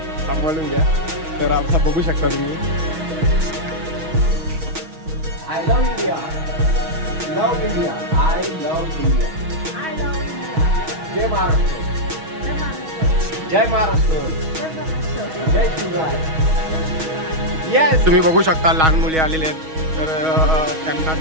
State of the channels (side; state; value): left; late; 6.3 ms